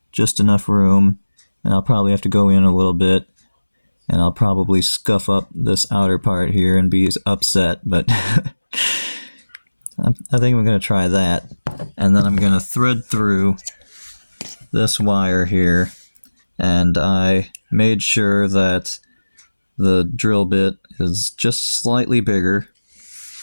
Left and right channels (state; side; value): inverted; both; correlation -1.00